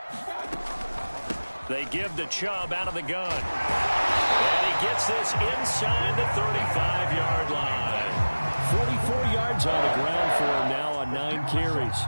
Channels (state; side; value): inverted; both; correlation -1.00